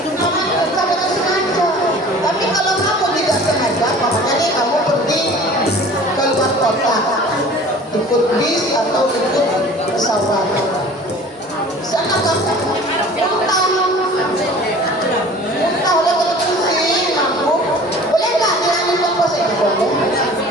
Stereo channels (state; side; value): normal; both; correlation 0.44